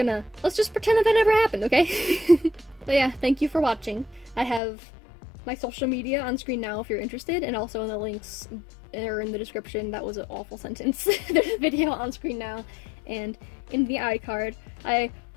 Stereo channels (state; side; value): drops out; right; at 4.6 s